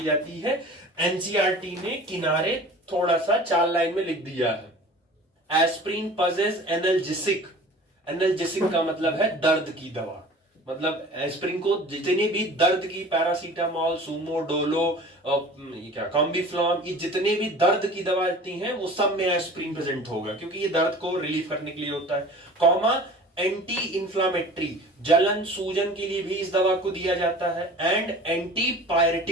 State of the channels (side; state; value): both; normal; correlation 0.42